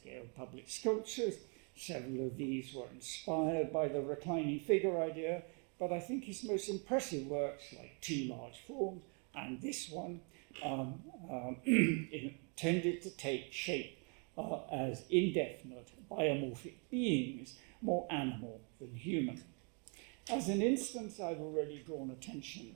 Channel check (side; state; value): left; quieter; 37.1 dB